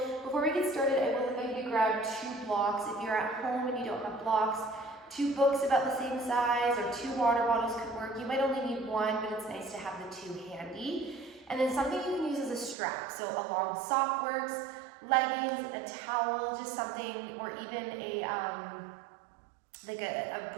before we get started, I will invite you to grab 2 blocks. If you're at home and you don't have blocks, 2 books about the same size or 2 water bottles could work. You might only need 1, but it's nice to have the 2 handy. And then something you can use as a strap. So a long sock works, leggings, a towel, just something, or even a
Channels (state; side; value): drops out; left; at 12.8 s